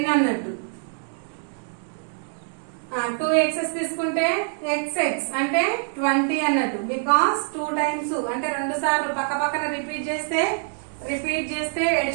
అన్నట్టు. 2 X's తీసుకుంటే XX అంటే 20 అన్నట్టు. బికాస్ 2 times అంటే 2 సార్లు పక్కన రిపీట్ చేస్తే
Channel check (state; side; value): silent; left; 60 dB below the other